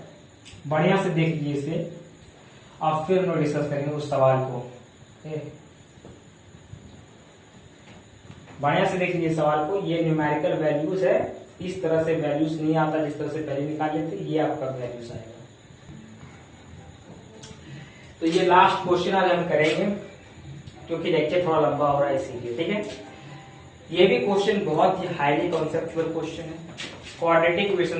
बढ़िया से देख लीजिए इसे, आप फिर हम डिस्कस करेंगे उस सवाल को। बढ़िया से देख लीजिए सवाल को, ये न्यूमेरिकल वैल्यूज है, इस तरह से वैल्यूज नहीं आता जिस तरह से पहले निकाल लेते, ये आपका वैल्यूज आएगा। तो ये लास्ट क्वेश्चन आज हम करेंगे क्योंकि लेक्चर थोड़ा लंबा हो रहा है इसीलिए, ठीक है। ये भी क्वेश्चन बहुत ही हाईली कॉन्सेप्चुअल क्वेश्चन है, क्वाड्रेटिक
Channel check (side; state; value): both; identical; correlation 1.00